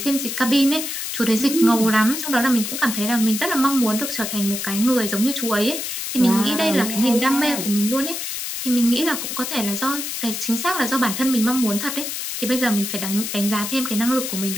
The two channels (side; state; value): left; noise; hiss, 4 dB below the sound